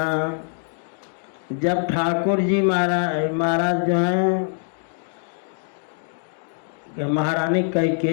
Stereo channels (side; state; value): right; silent; digital silence